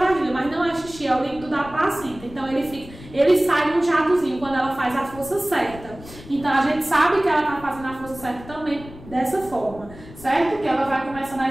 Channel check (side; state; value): left; noise; rumble, 17 dB below the sound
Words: mas não é xixi, é o líquido da placenta. Então ele sai num jatozinho quando ela faz a força certa. Então a gente sabe que ela está fazendo a força certa também dessa forma, certo? Que ela vai começando a